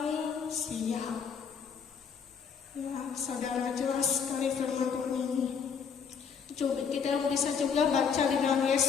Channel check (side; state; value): right; quieter; 6.5 dB